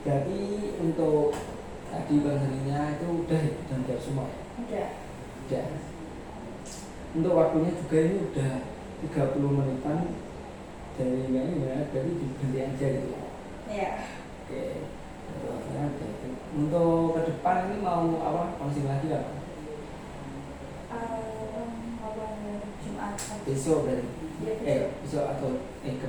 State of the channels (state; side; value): identical; both; correlation 1.00